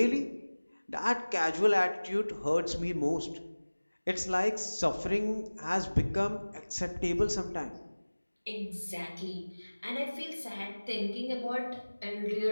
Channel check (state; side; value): inverted; both; correlation -1.00